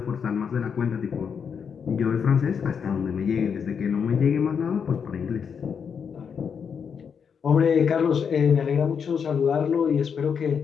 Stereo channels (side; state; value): right; quieter; 6.8 dB